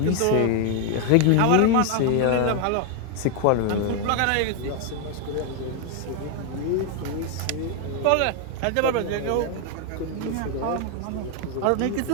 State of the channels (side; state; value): both; different; correlation 0.01